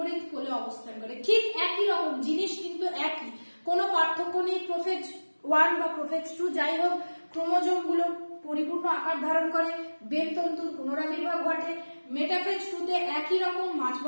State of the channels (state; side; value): inverted; both; correlation -1.00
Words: কোলে অবস্থান করে, ঠিক একই রকম জিনিস কিন্তু একই, কোনো পার্থক্য নেই। প্রোফেজ 1 বা প্রোফেজ 2 যাই হোক, ক্রোমোজোম গুলো পরিপূর্ণ আকার ধারণ করে, বেলতন্তুর পুনরাবির্ভাব ঘটে। মেটাফেজ 2 তে একই রকম মাঝ